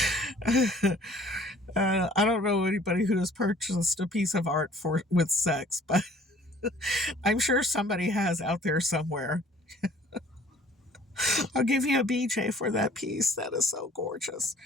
I don't know anybody who has purchased a piece of art with sex, but I'm sure somebody has out there somewhere. I'll give you a BJ for that piece. That is so gorgeous.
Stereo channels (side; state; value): both; normal; correlation 0.54